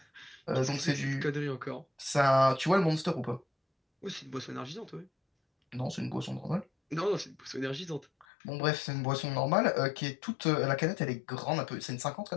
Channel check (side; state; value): right; drops out; at 8.2 s